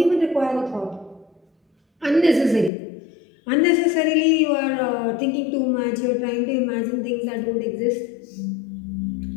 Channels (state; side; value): drops out; right; at 2.7 s